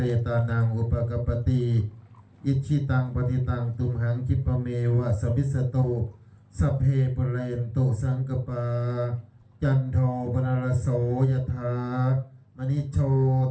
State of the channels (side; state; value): both; identical; correlation 1.00